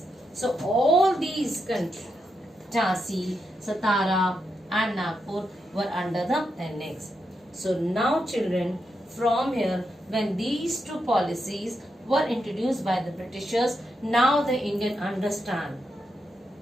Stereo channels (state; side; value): normal; both; correlation 0.84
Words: So all these countries, Jhansi, Satara and Nagpur were under the annex. So now children, from here, when these two policies were introduced by the Britishers, now the Indian understand.